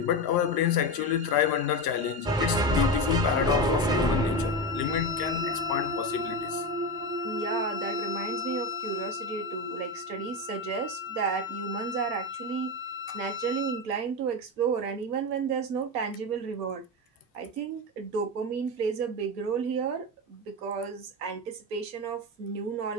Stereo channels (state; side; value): normal; both; correlation 0.17